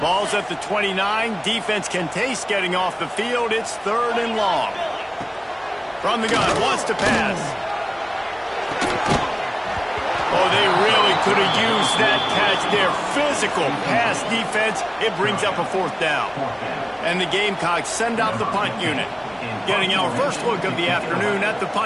Ball's at the 29. Defense can taste getting off the field. It's third and long. From the gun, wants to pass. Oh, they really could have used that catch there. Physical pass defense. It brings up a fourth down. And the Gamecocks send out the punt unit. Getting our first look of the afternoon at the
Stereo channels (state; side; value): identical; both; correlation 1.00